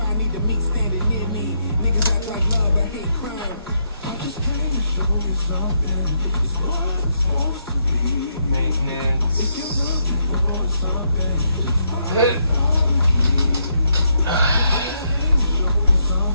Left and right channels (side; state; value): both; inverted; correlation -0.77